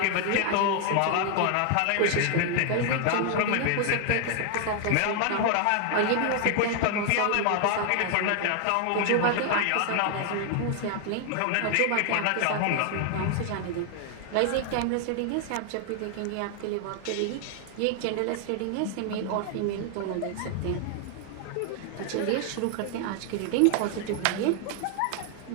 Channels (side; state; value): both; different; correlation 0.00